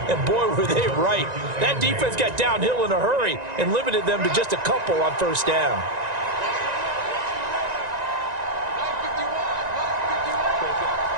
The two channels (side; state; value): left; late; 1.9 ms